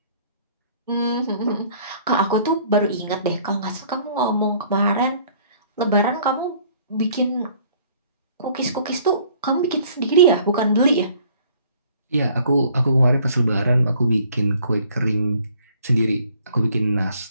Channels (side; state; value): both; inverted; correlation -0.58